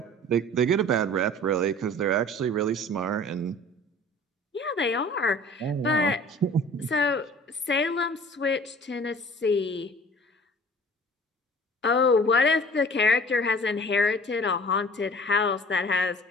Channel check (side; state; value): both; normal; correlation 0.47